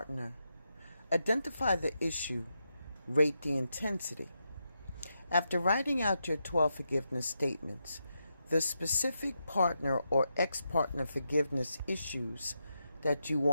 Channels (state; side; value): inverted; both; correlation -0.84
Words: Identify the issue, rate the intensity. After writing out your 12 forgiveness statements, the specific partner or ex-partner forgiveness issues that you